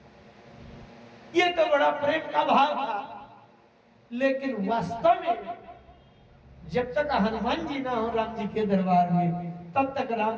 ये तो बड़ा प्रेम का भाव था। लेकिन वास्तव में जब तक हनुमान जी ना हो राम जी के दरबार में, तब तक राम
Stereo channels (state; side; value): identical; both; correlation 1.00